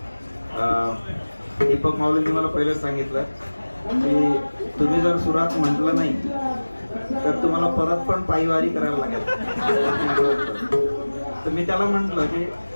दीपक माऊलींनी मला पहिलेच सांगितलं की तुम्ही जर सुरात म्हटलं नाही तर तुम्हाला परत पण पायवारी करायला लागेल. तर मी त्याला म्हटलं की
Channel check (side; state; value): both; inverted; correlation -1.00